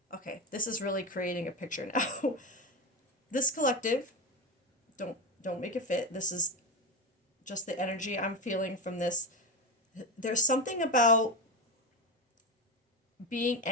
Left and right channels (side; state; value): both; normal; correlation 0.18